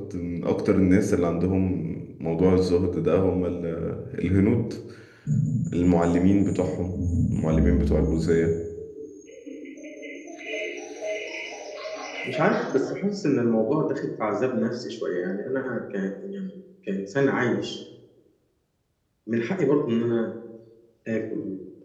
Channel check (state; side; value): identical; both; correlation 1.00